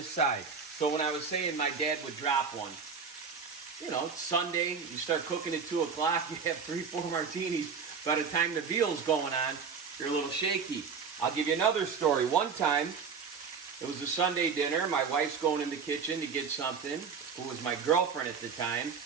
side. So when I was saying my dad would drop one, you know, Sunday, you start cooking at 2 o'clock, you have 3-4 martinis. By the time the veal's going on, you're a little shaky. I'll give you another story. One time, it was a Sunday dinner. My wife's going in the kitchen to get something, who was my girlfriend at the time.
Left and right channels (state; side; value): quieter; left; 5.8 dB